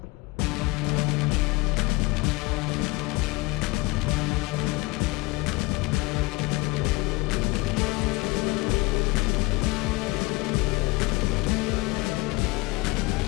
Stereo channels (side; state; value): right; quieter; 23.6 dB